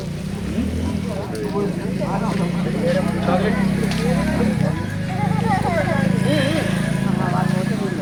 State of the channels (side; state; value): both; identical; correlation 1.00